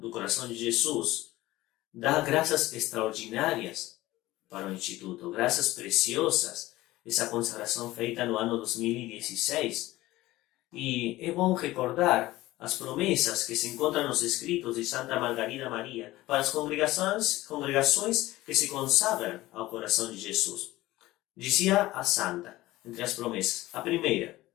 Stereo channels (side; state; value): right; quieter; 17.6 dB